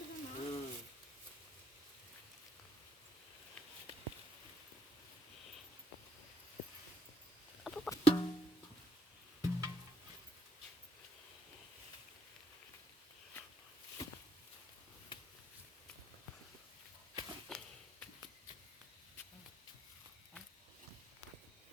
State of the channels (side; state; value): both; normal; correlation 0.72